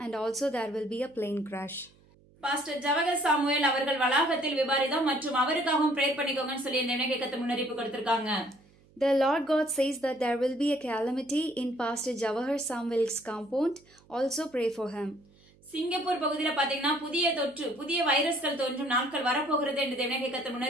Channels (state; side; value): noise; right; hum, 29 dB below the sound